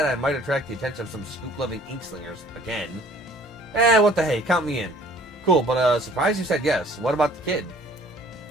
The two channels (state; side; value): normal; both; correlation 0.54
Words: I might attract the attention of some scoop-loving inkslingers again. What the hey, count me in. Cool, but surprised you said yes. What about the kid?